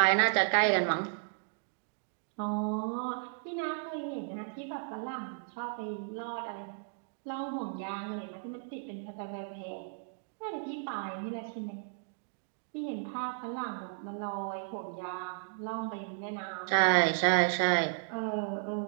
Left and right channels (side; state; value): left; silent; digital silence